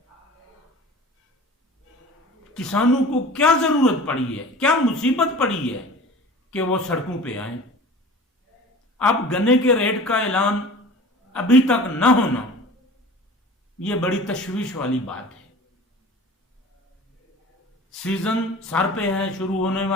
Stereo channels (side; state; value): both; normal; correlation 0.40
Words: کسانوں کو کیا ضرورت پڑی ہے، کیا مصیبت پڑی ہے کہ وہ سڑکوں پہ آئیں؟ اب گنے کے ریٹ کا اعلان ابھی تک نہ ہونا، یہ بڑی تشویش والی بات ہے۔ سیزن سر پہ ہے، شروع ہونے